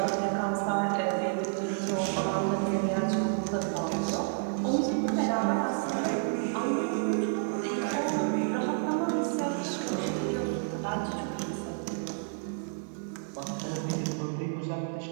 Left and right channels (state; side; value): silent; left; digital silence